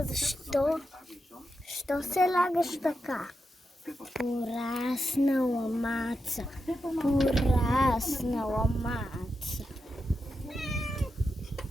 Защо? Що се лагаш така? Пораснала Маца. Пораснала Маца.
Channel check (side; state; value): both; normal; correlation 0.87